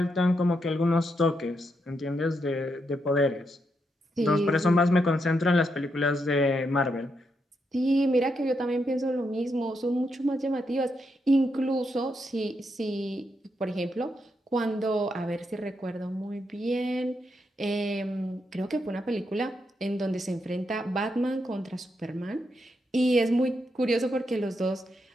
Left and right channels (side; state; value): both; normal; correlation 0.81